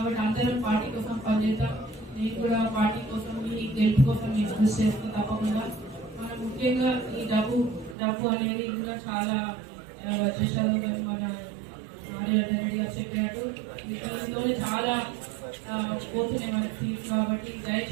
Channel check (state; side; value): drops out; left; at 8.0 s